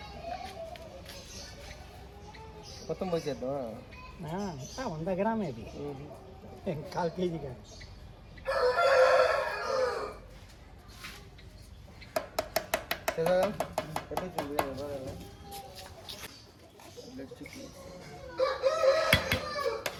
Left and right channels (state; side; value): identical; both; correlation 1.00